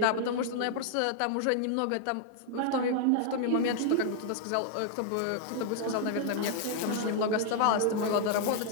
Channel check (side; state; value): both; different; correlation -0.01